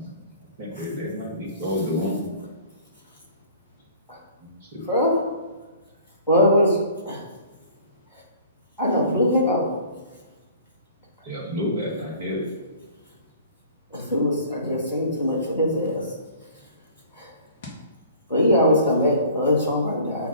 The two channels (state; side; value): inverted; both; correlation -0.48